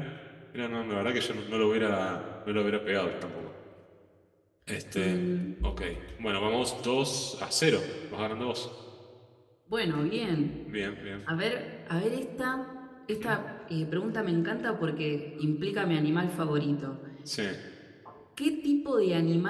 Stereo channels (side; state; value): both; identical; correlation 1.00